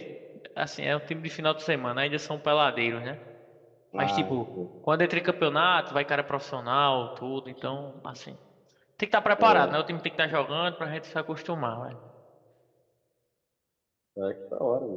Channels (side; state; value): both; identical; correlation 1.00